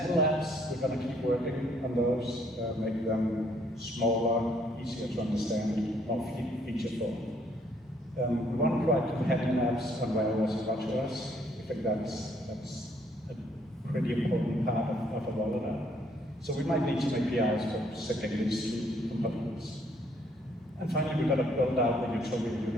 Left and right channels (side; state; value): both; normal; correlation 0.67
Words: apps, we're going to keep working on those, make them smaller, easier to understand, more featureful. We want to provide companion apps on iOS and watchOS. I think that's a pretty important part of a rollout. So we might need some APIs for setting these two components. And finally, we've got to build out the utility